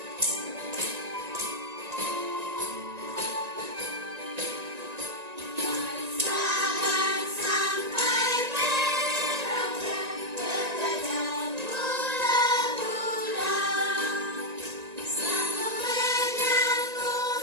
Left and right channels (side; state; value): left; late; 1.9 ms